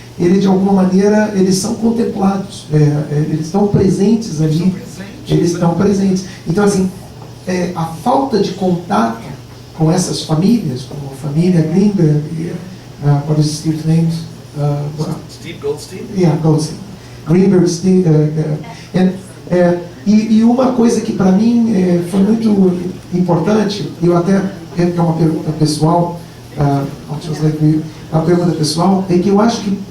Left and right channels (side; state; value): both; identical; correlation 1.00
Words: De alguma maneira, eles são contemplados. Eles estão presentes ali. Eles estão presentes. Então, assim, a falta de contato com essas famílias, como a família Greenberg, what is Steve's name? Steve Goldstein? Yeah, Goldstein. Greenberg, Steve, e uma coisa que para mim foi muito importante, eu até que é uma pergunta pessoal, a pergunta pessoal é que eu acho que